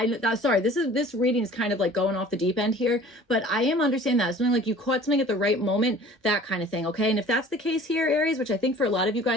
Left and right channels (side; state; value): both; normal; correlation 0.47